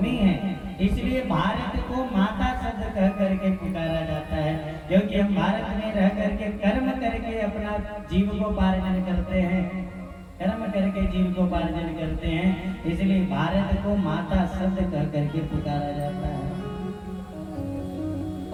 है, इसलिए भारत को माता शब्द कह करके पुकारा जाता है, क्योंकि हम भारत में रह करके कर्म करके अपना जीविकोपार्जन करते हैं। कर्म करके जीविकोपार्जन करते हैं, इसलिए भारत को माता शब्द कह करके पुकारा जाता है।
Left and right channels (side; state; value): both; identical; correlation 1.00